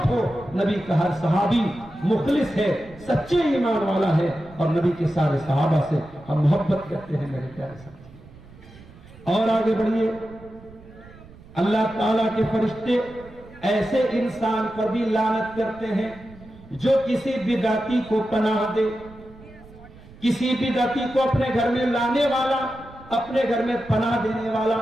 ہو، نبی کا ہر صحابی مخلص ہے، سچے ایمان والا ہے، اور نبی کے سارے صحابہ سے ہم محبت کرتے ہیں میرے پیارے ساتھی۔ اور آگے بڑھیے، اللہ تعالیٰ کے فرشتے ایسے انسان پر بھی لعنت کرتے ہیں جو کسی بدعتی کو پناہ دے، کسی بدعتی کو اپنے گھر میں لانے والا، اپنے گھر میں پناہ دینے والا،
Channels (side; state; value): right; noise; rumble, 21 dB below the sound